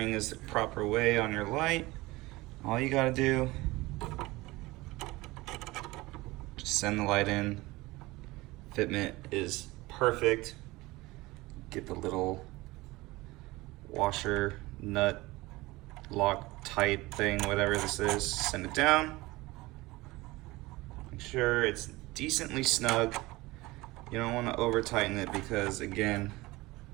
is the proper way on your light. All you gotta do, just send the light in. Fitment is perfect. Get the little washer, nut, lock tight thing, whatever this is, send it down. Make sure it's decently snug. You don't want to over tighten it because again,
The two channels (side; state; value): left; quieter; 20.6 dB